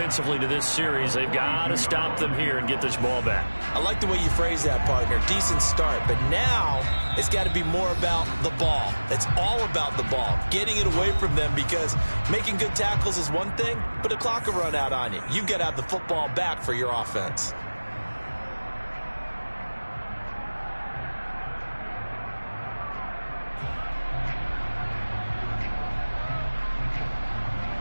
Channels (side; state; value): both; inverted; correlation -1.00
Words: to this series. They've got to stop them here and get this ball back. I like the way you phrase that, partner. Decent start. But now it's got to be more about the ball. It's all about the ball. Getting it away from them, because making good tackles is one thing, but the clock will run out on you. You've got to have the football back for your offense.